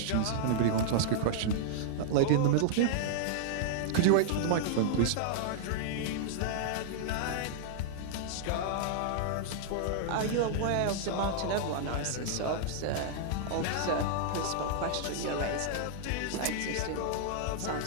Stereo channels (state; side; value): different; both; correlation -0.01